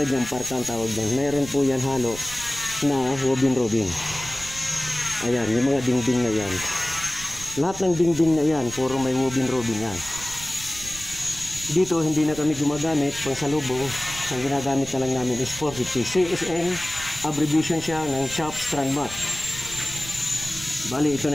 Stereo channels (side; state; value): right; noise; rumble, 13 dB below the sound